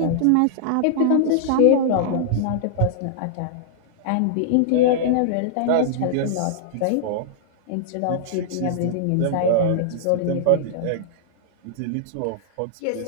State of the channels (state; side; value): different; both; correlation -0.01